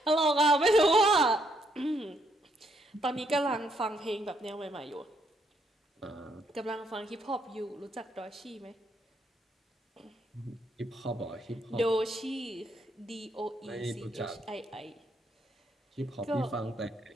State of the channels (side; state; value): both; normal; correlation 0.73